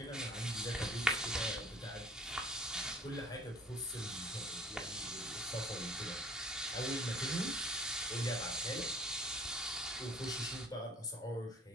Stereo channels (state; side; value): normal; both; correlation 0.53